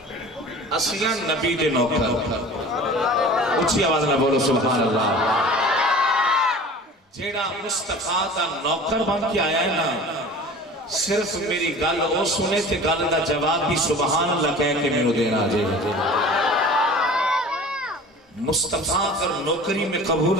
اسیاں نبی دے نوکر. اچھی آواز نہ بولو سبحان اللہ. جیڑا مصطفیٰ دا نوکر بن کے آیا ہے نا، صرف میری گل او سنے تے گل دا جواب بھی سبحان اللہ کہہ کے میرے دینا آجے. مصطفیٰ اگر نوکری میں قبول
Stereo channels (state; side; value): normal; both; correlation 0.41